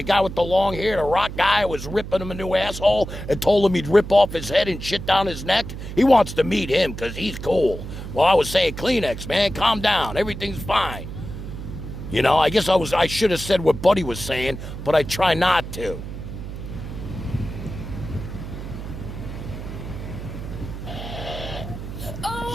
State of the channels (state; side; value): noise; right; hum, 9 dB below the sound